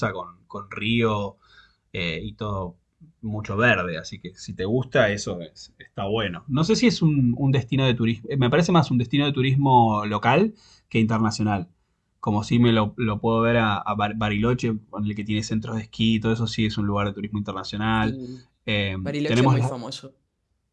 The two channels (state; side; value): identical; both; correlation 1.00